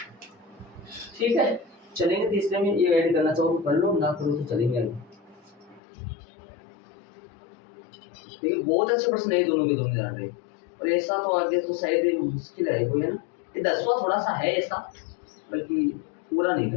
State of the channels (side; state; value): right; drops out; at 5.8 s